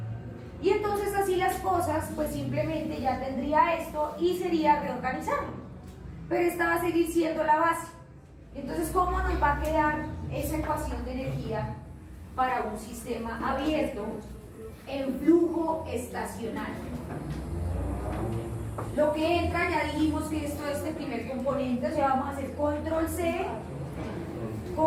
Y entonces así las cosas, pues simplemente ya tendría esto y sería reorganizarlo. Pero esta va a seguir siendo la base. Entonces, ¿cómo nos va a quedar esa ecuación de energía para un sistema abierto en flujo estacionario? Lo que entra, ya dijimos que esto es este primer componente, o sea, vamos a hacer control C,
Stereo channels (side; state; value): both; identical; correlation 1.00